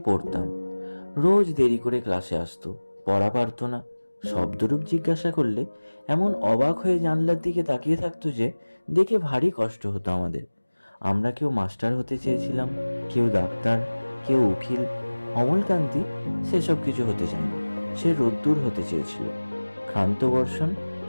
রোজ দেরি করে ক্লাসে আসতো, পড়া পারতো না। শব্দরূপ জিজ্ঞাসা করলে এমন অবাক হয়ে জানলার দিকে তাকিয়ে থাকতো যে দেখে ভারী কষ্ট হতো আমাদের। আমরা কেউ মাস্টার হতে চেয়েছিলাম, কেউ ডাক্তার, কেউ উকিল। অমলকান্তি সেসব কিছু হতে চায়নি। সে রোদ্দুর হতে চেয়েছিল। ক্ষান্ত বর্ষণ,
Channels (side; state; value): both; inverted; correlation -1.00